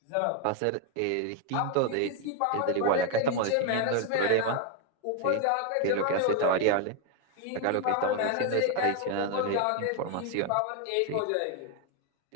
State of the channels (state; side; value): different; both; correlation 0.01